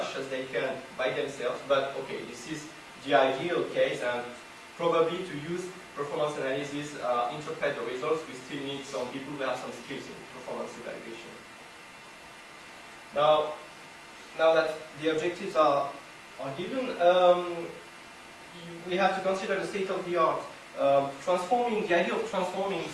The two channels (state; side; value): identical; both; correlation 1.00